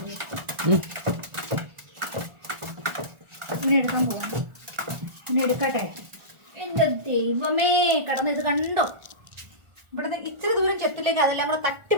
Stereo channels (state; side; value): late; left; 1.4 ms